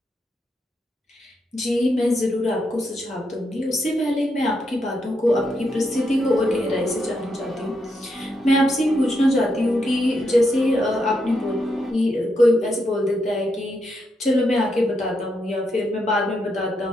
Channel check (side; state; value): both; normal; correlation 0.81